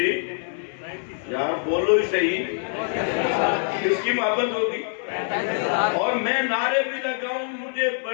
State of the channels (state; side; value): silent; right; 61 dB below the other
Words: یار بولو ہی صحیح، کس کی محبت ہوگی؟ اور میں نعرے بھی لگاؤں مجھے